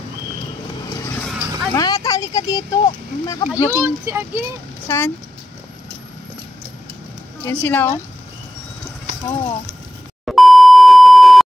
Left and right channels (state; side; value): normal; both; correlation 0.91